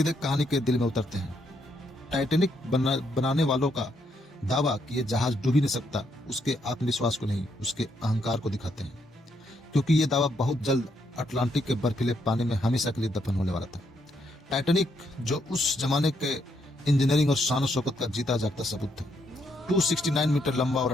कहानी के दिल में उतरते हैं। टाइटैनिक बनाने वालों का दावा कि यह जहाज डूब ही नहीं सकता उसके आत्मविश्वास को नहीं, उसके अहंकार को दिखाते हैं, क्योंकि यह दावा बहुत जल्द अटलांटिक के बर्फीले पानी में हमेशा के लिए दफन होने वाला था। टाइटैनिक, जो उस जमाने के इंजीनियरिंग और शान शौकत का जीता जागता सबूत था, 269 मीटर लंबा और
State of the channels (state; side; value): normal; both; correlation 0.76